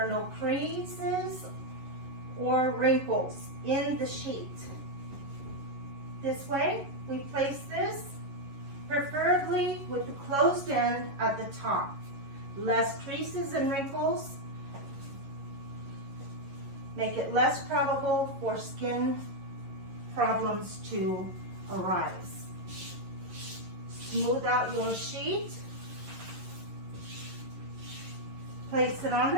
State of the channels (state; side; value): late; left; 11 ms